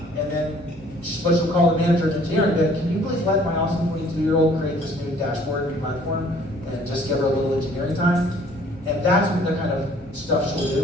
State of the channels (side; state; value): both; normal; correlation 0.56